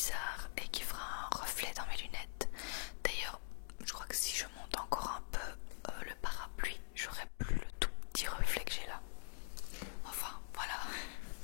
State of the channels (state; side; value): silent; right; digital silence